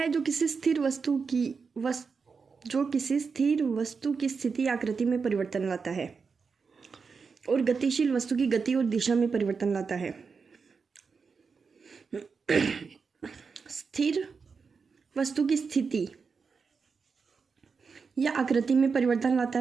जो किसी स्थिर वस्तु की स्थिति आकृति में परिवर्तन लाता है और गतिशील वस्तु की गति और दिशा में परिवर्तन लाता है। स्थिर वस्तु की स्थिति या आकृति में परिवर्तन लाता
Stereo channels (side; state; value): left; quieter; 5.3 dB